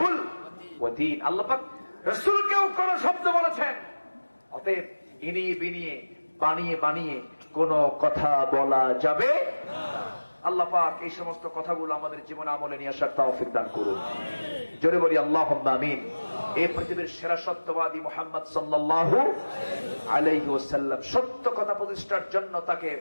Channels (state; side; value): inverted; both; correlation -1.00